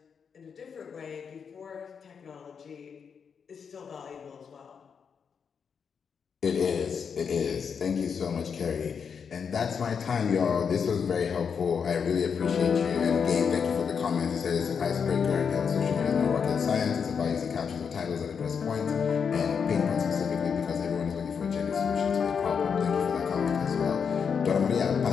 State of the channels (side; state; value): right; quieter; 6.5 dB